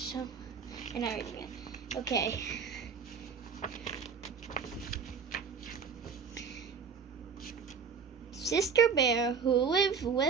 And I read again. Okay. Sister Bear, who lived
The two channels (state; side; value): quieter; left; 6.0 dB